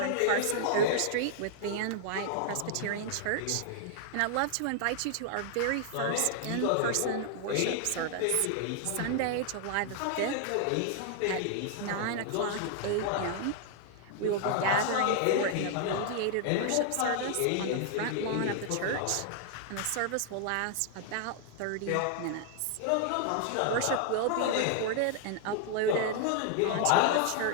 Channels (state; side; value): different; both; correlation 0.00